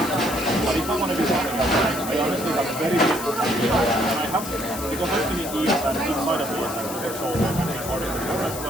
But if I want to do something like that, I honestly have very little idea. And I have, because I've been in years and inside of years and for so long and been part of the group as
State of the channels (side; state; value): left; noise; hiss, 9 dB below the sound